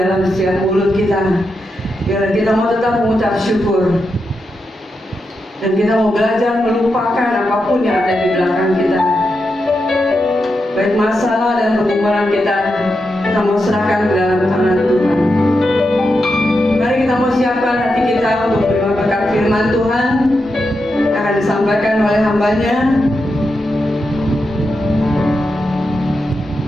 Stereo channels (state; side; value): normal; both; correlation 0.87